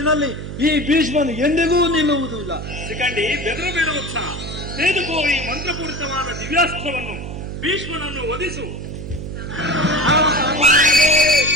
ಈ ಭೀಷ್ಮನು ಎಂದಿಗೂ ನಿಲ್ಲುವುದಿಲ್ಲ. ಸಿಕಂಡಿ, ಬೆದರು ಬೇಡ ಉತ್ಸಾಹ. ತೆಗೆದುಕೋ ಈ ಮಂತ್ರಪೂರಿತವಾದ ದಿವ್ಯಾಸ್ತ್ರವನ್ನು. ಭೀಷ್ಮನನ್ನು ವಧಿಸು.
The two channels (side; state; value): right; noise; hum, 8 dB below the sound